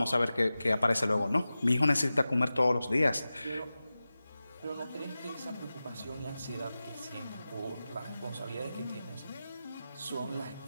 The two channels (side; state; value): both; inverted; correlation -0.95